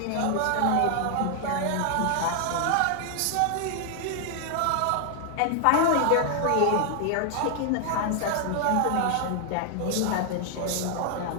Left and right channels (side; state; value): both; different; correlation 0.00